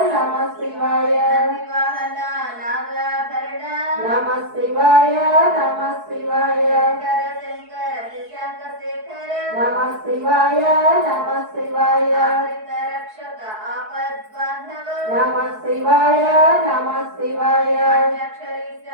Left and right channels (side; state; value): left; late; 4.7 ms